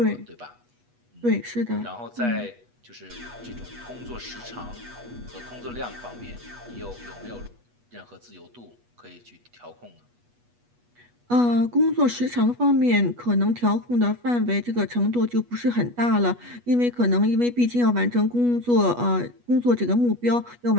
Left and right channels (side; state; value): left; late; 8.3 ms